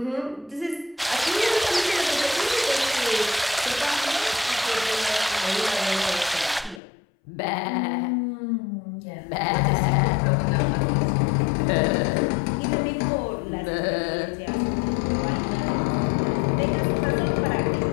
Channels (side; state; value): right; drops out; at 6.8 s